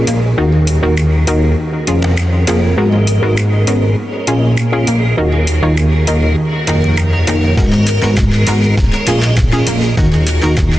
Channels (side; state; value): both; normal; correlation 0.93